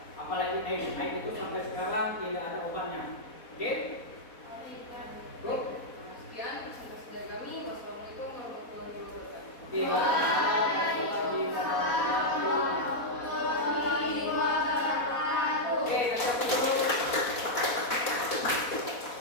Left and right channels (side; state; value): right; late; 4.1 ms